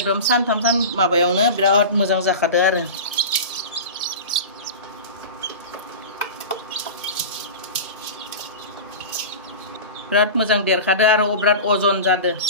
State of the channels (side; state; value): both; inverted; correlation -0.30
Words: सानथाम माबायावनो बिराद मोजां जाखादो आरो बिराद मोजां देरखादो आरो बिराद अजन जादो